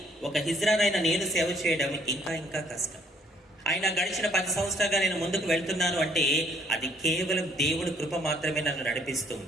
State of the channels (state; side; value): normal; both; correlation 0.64